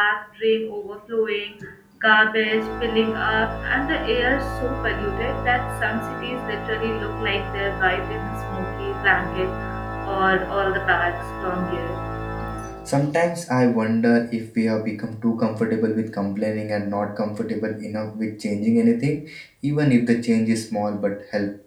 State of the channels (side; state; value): both; identical; correlation 1.00